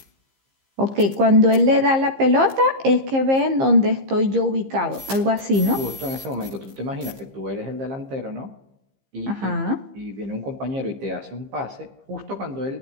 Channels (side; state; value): left; late; 15 ms